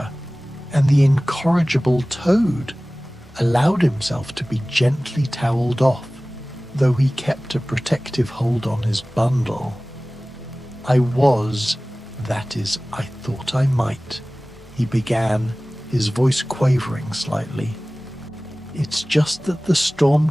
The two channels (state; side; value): normal; both; correlation 0.98